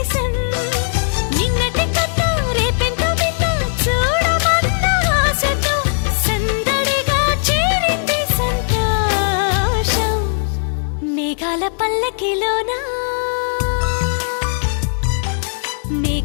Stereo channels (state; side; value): silent; right; digital silence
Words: నిన్నటి కథ రేపెంత వింత చూడమన్న ఆశతో సందడిగా చేరింది సంతోషం మేఘాల పల్లకిలోనా